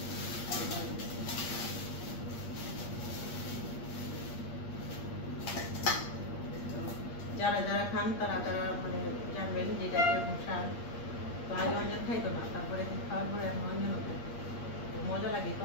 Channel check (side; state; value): right; late; 8.5 ms